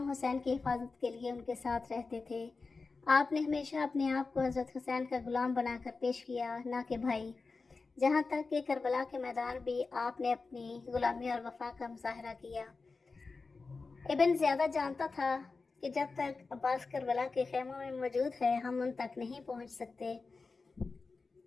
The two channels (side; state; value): right; quieter; 4.1 dB